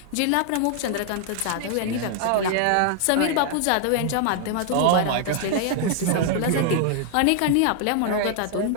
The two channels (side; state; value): both; different; correlation 0.00